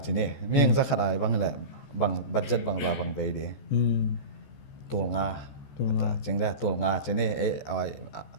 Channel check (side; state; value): right; late; 14 ms